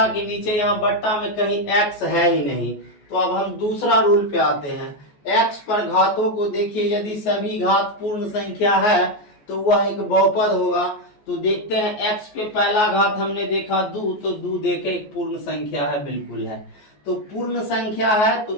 के नीचे, यहाँ बट्टा में कहीं x है ही नहीं, तो अब हम दूसरा रूल पे आते हैं। x पर घातों को देखिए, यदि सभी घात पूर्ण संख्या है तो वह एक बहुपद होगा। तो देखते हैं x पे पहला घात हमने देखा 2, तो 2 देखे एक पूर्ण संख्या है, बिल्कुल है। तो पूर्ण संख्या है, तो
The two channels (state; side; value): late; right; 14 ms